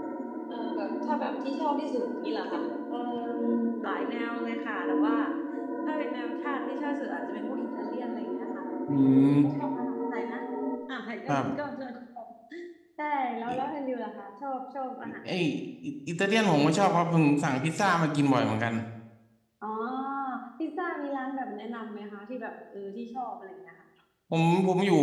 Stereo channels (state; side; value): identical; both; correlation 1.00